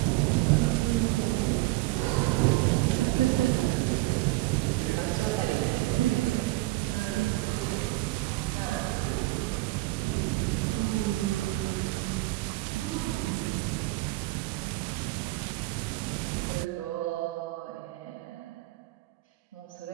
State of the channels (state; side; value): quieter; left; 20.3 dB